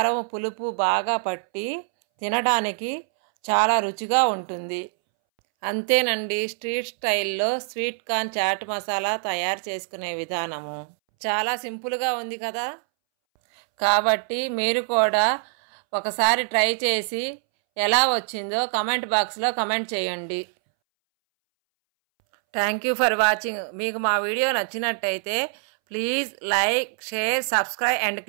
పులుపు బాగా పట్టి తినడానికి చాలా రుచిగా ఉంటుంది. అంతేనండి, స్ట్రీట్ స్టైల్లో స్వీట్ కార్న్ చాట్ మసాలా తయారు చేసుకునే విధానము చాలా సింపుల్గా ఉంది కదా. కాబట్టి మీరు కూడా ఒకసారి ట్రై చేసి ఎలా వచ్చిందో కమెంట్ బాక్స్లో కమెంట్ చేయండి. Thank you for watching. మీకు మా వీడియో నచ్చినట్టయితే please like, share, subscribe and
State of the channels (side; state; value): left; silent; 62 dB below the other